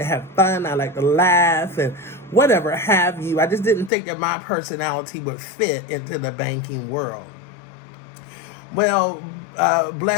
have fun. I like to laugh and whatever have you. I just didn't think that my personality would fit into the banking world. Well,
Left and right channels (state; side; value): drops out; right; at 3.9 s